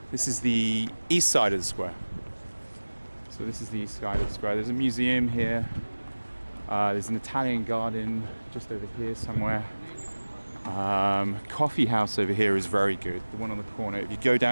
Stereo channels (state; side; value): inverted; both; correlation -1.00